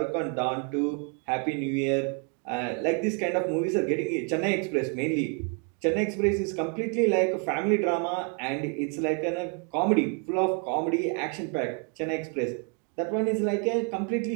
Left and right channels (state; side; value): quieter; left; 38.5 dB